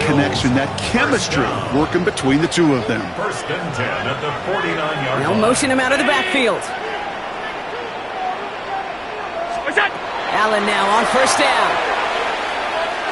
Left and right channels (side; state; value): both; identical; correlation 1.00